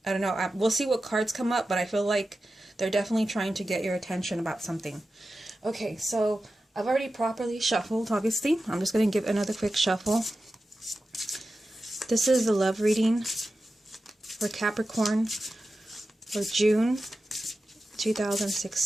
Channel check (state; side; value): normal; both; correlation 0.93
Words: I don't know, we'll see what cards come up, but I feel like they're definitely trying to get your attention about something. Okay, so I've already properly shuffled, obviously. I'm just going to give another quick shuffle. This is the love reading for Capricorn for June